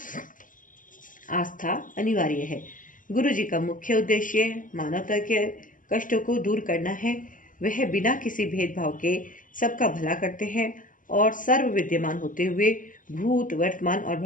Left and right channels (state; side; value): late; right; 0.38 ms